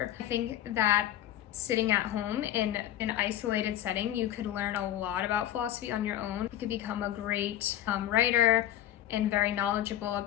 I think that sitting at home in an isolated setting, you could learn a lot about philosophy on your own. You could become a great writer and very knowledgeable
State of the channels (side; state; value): right; quieter; 12.4 dB